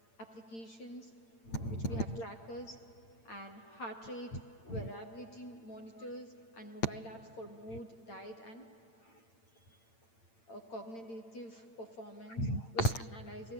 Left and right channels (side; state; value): right; late; 8.8 ms